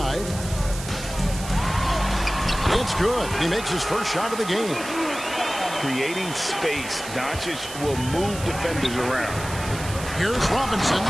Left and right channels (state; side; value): noise; right; hiss, 11 dB below the sound